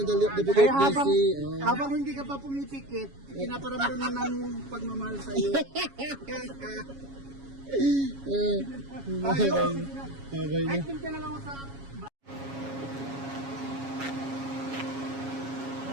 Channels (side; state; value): left; late; 7.2 ms